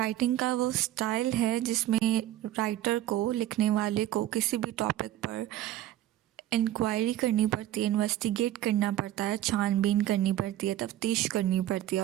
का वो style है जिसमें writer को, लिखने वाले को किसी भी टॉपिक पर इंक्वायरी करनी पड़ती है, इन्वेस्टिगेट करना पड़ता है, छानबीन करनी पड़ती है, तफ्तीश करनी पड़ती है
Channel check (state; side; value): quieter; left; 13.4 dB